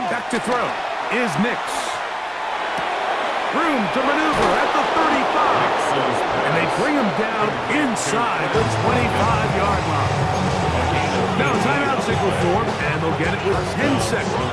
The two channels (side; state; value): both; identical; correlation 1.00